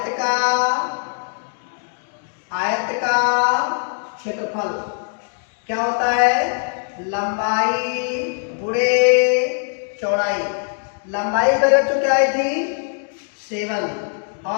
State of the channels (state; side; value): silent; right; 62 dB below the other